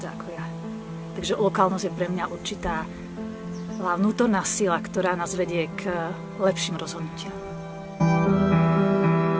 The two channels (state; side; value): identical; both; correlation 1.00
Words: ako ja. Takže lokálnosť je pre mňa určitá vnútorná sila, ktorá nás vedie k lepším rozhodnutiam.